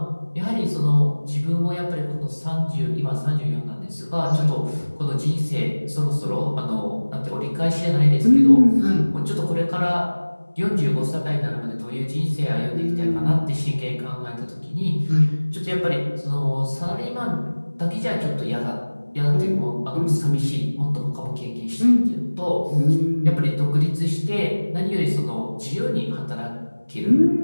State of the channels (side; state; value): both; inverted; correlation -1.00